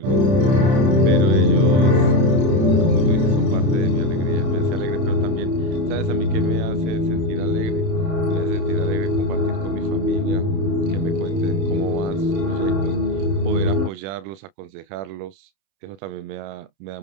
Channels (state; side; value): late; left; 31 ms